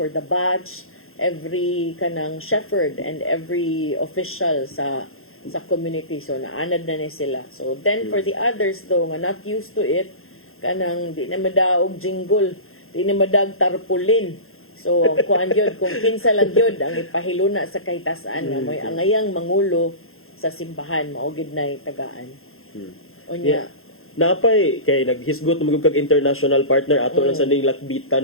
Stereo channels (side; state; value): right; late; 0.61 ms